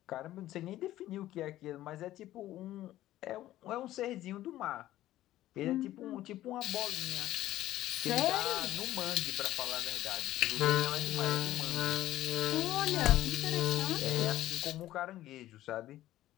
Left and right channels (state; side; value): quieter; right; 14.4 dB